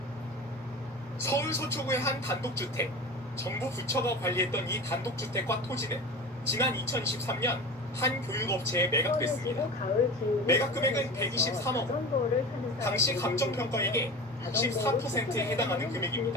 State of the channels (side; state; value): both; normal; correlation 0.32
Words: 서울 서초구의 한 단독주택. 정부 부처가 관리했던 이 단독주택과 토지는 지난 2023년 한 교육업체에 매각됐습니다. 매각 금액은 123억 원. 당시 감정평가액의 64%에 해당하는